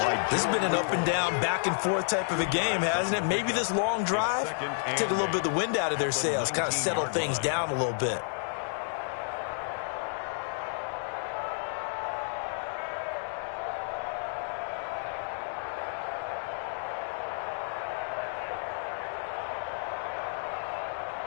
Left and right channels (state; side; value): silent; right; digital silence